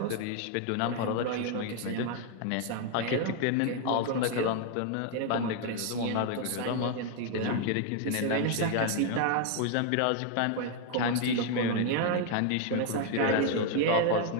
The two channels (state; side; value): different; both; correlation 0.01